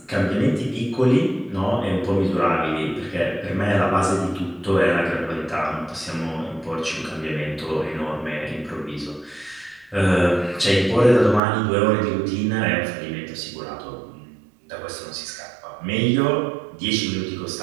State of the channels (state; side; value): drops out; left; at 11.4 s